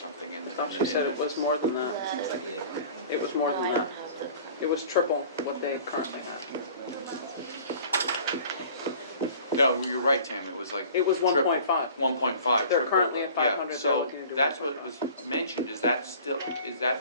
in the... I thought you said it was more than that. It was more than that. It was triple what they currently have. No, you're right, Tam, it was like. It was 1.5. 1.5. They're triple, currently at 500, Yeah, so they're looking to do that's what 1.5. was mentioned, is that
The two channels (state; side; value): inverted; both; correlation -0.46